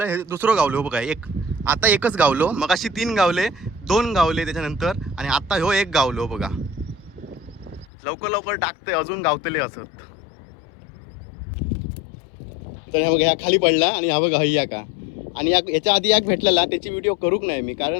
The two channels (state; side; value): drops out; right; at 7.9 s